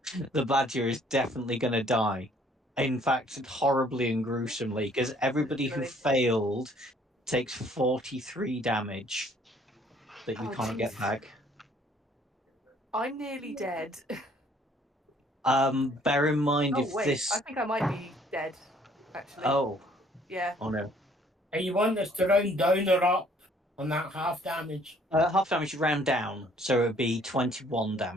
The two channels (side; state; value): both; normal; correlation 0.60